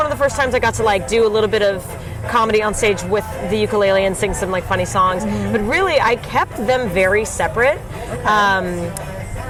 of the first times I got to like do a little bit of comedy on stage with the ukulele and sing some like funny songs. But really, I kept them very separate.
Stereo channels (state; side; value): identical; both; correlation 1.00